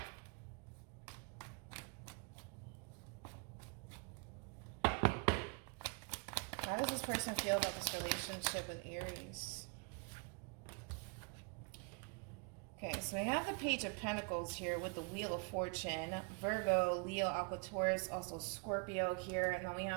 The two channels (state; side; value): quieter; left; 35.8 dB